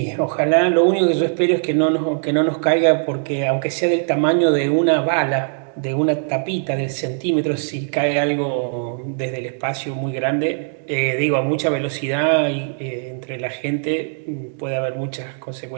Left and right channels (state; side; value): silent; left; digital silence